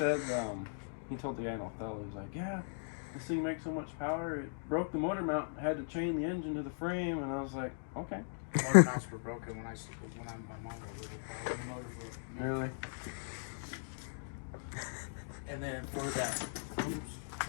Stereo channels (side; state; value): right; silent; digital silence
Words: he told the guy in Othello, he was like, yeah, this thing makes so much power, it broke the motor mount, had to chain the engine to the frame, and I was like, okay. The motor mounts were broken when my mom was little. The motor broke. Really? And then for that